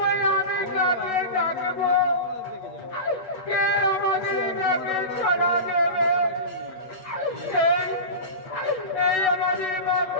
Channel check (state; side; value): late; right; 8.0 ms